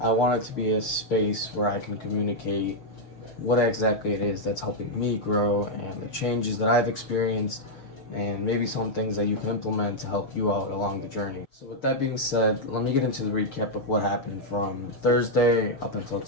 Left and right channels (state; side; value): late; right; 6.7 ms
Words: want it to be a space where I can communicate what exactly it is that's helping me grow and the changes that I've experienced and maybe some things that you can implement to help you out along the journey. So with that being said, let me get into the recap of what happened from Thursday up until